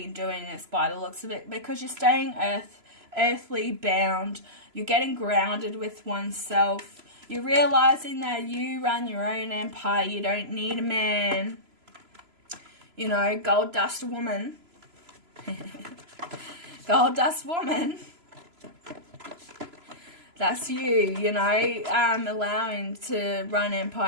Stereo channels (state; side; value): late; left; 3.0 ms